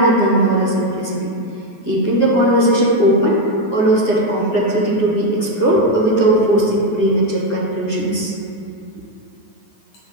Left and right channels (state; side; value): late; right; 9.5 ms